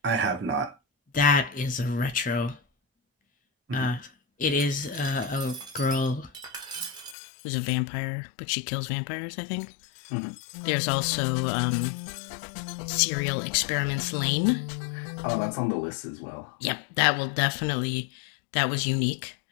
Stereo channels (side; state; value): right; drops out; at 7.2 s